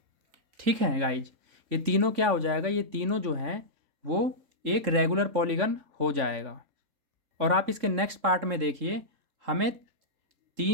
ठीक है गाइज, ये तीनों क्या हो जाएगा, ये तीनों जो हैं वो एक रेगुलर पॉलीगन हो जाएगा। और आप इसके नेक्स्ट पार्ट में देखिए, हमें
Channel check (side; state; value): left; late; 3.5 ms